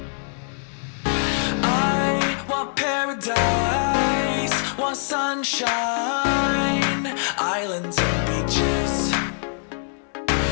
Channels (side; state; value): right; silent; digital silence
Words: I want paradise, want sunshine, islands and beaches,